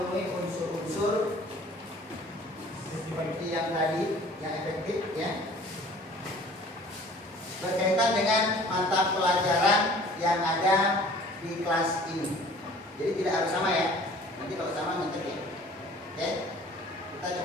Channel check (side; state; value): both; normal; correlation 0.49